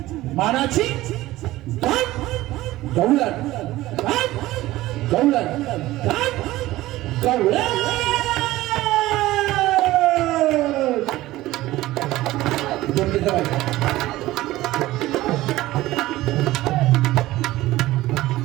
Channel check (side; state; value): left; quieter; 16.9 dB